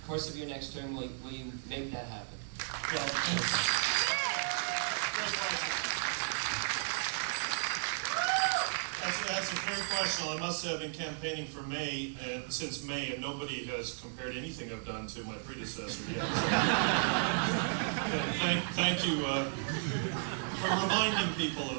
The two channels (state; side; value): silent; left; digital silence